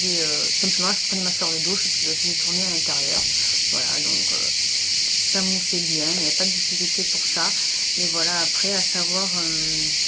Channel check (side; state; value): both; identical; correlation 1.00